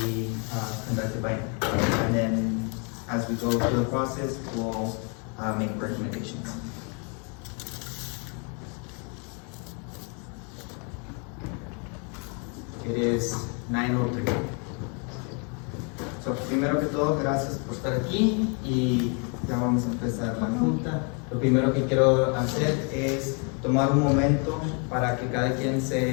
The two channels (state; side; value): quieter; right; 37.0 dB